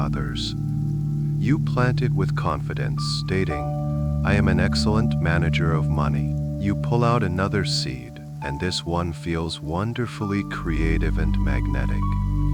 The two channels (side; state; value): both; identical; correlation 1.00